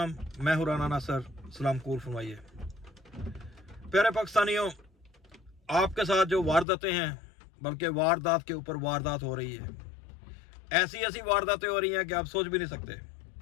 मैं हूँ राना नासर, सलाम कबूल फरमाइए। प्यारे पाकिस्तानियों, आपके साथ जो वारदातें हैं, बल्कि वारदात के ऊपर वारदात हो रही है। ऐसी ऐसी वारदातें हो रही हैं कि आप सोच भी नहीं सकते।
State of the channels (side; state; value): right; drops out; at 6.7 s